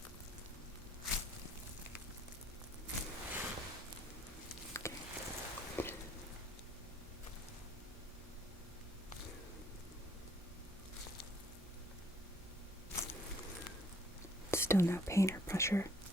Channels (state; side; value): normal; both; correlation 0.61